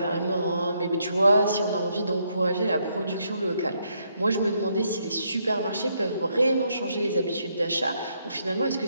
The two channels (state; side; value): inverted; both; correlation -0.75